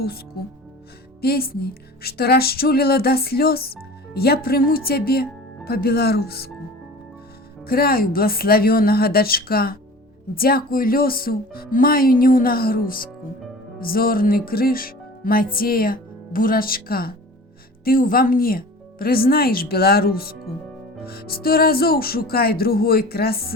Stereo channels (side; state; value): both; normal; correlation 0.40